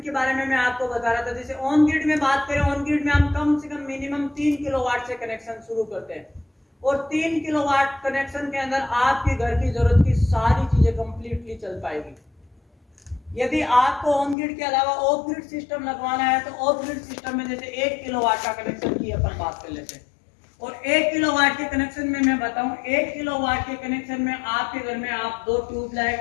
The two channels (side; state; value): right; drops out; at 14.4 s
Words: के बारे में, मैं आपको बता रहा था, जैसे ऑन ग्रिड में बात करें, ऑन ग्रिड में हम कम से कम मिनिमम 3 किलोवाट से कनेक्शन शुरू करते हैं, और 3 किलोवाट कनेक्शन के अंदर आपके घर की जरूरत की सारी चीजें कंप्लीटली चल पाएगी। यदि आपको ऑन ग्रिड के अलावा ऑफ ग्रिड सिस्टम लगवाना है, तो ऑफ ग्रिड सिस्टम में जैसे 1 किलोवाट का कनेक्शन की अपन बात कर लेते हैं, और 1 किलोवाट के कनेक्शन में मैं बताऊं, 1 किलोवाट के कनेक्शन में आपके घर में आप 2